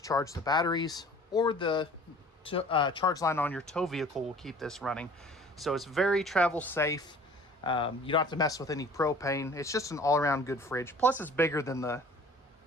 charge the batteries, or the charge line on your tow vehicle will keep this running. So it's very travel safe. You don't have to mess with any propane. It's just an all-around good fridge. Plus, it's bigger than the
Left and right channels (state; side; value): normal; both; correlation 0.48